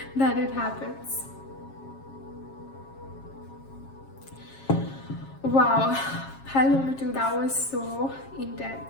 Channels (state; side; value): late; right; 7.4 ms